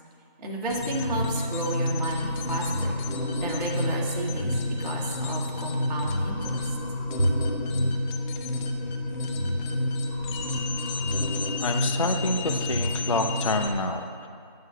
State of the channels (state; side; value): inverted; both; correlation -0.62